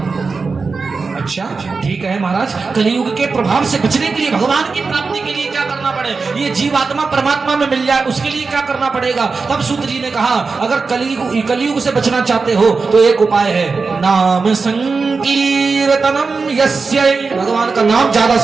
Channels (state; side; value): quieter; left; 4.5 dB